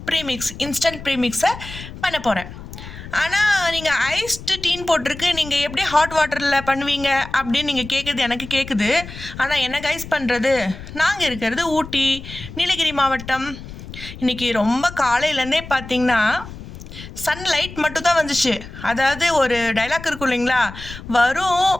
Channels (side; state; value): left; noise; rumble, 13 dB below the sound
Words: premix, instant ப்ரீமிக்ஸை பண்ண போகிறேன். ஆனால் நீங்கள் ஐஸ்டு டீன்னு போட்டிருக்கு, நீங்கள் எப்படி ஹாட் வாட்டரில் பண்ணுவீங்க அப்படின்னு நீங்கள் கேட்குறது எனக்கு கேட்குது. ஆனால் என்ன கைஸ் பண்ணுறது, நாங்கள் இருக்கிறது ஊட்டி, நீலகிரி மாவட்டம். இன்றைக்கி ரொம்ப காலையிலேருந்தே பார்த்திங்கன்னா சன்லைட் மட்டும் தான் வந்துச்சு. அதாவது ஒரு டைலாக் இருக்கும் இல்லைங்களா, வரும்